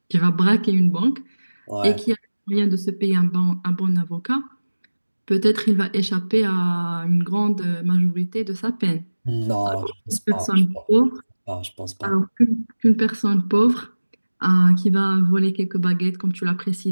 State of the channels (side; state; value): both; inverted; correlation -1.00